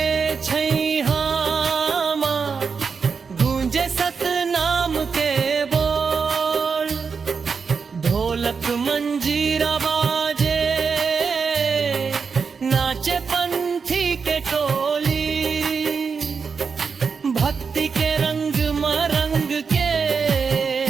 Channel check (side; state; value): left; quieter; 5.5 dB